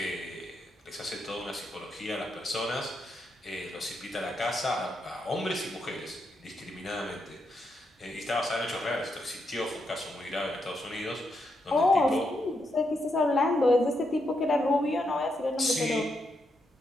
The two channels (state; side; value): normal; both; correlation 0.81